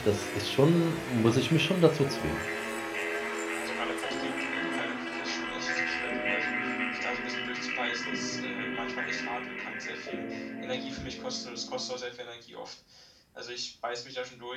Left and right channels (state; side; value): identical; both; correlation 1.00